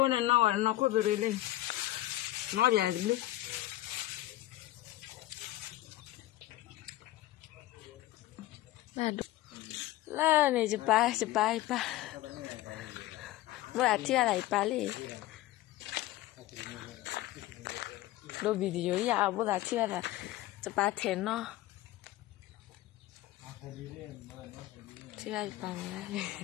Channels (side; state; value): right; quieter; 16.1 dB